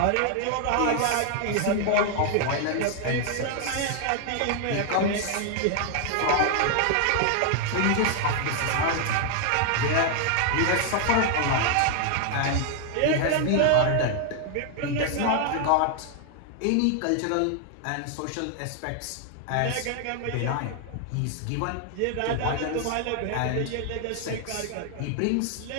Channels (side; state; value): both; different; correlation 0.00